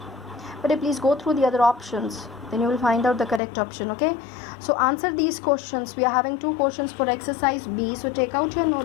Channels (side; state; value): right; drops out; at 3.4 s